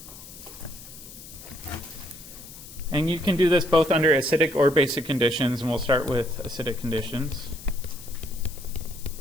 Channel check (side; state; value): left; noise; hiss, 16 dB below the sound